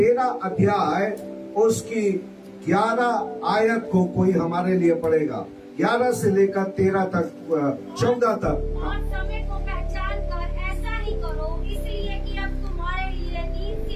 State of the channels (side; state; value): both; identical; correlation 1.00